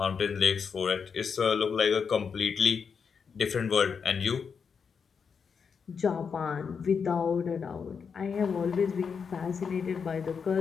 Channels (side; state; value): right; quieter; 6.1 dB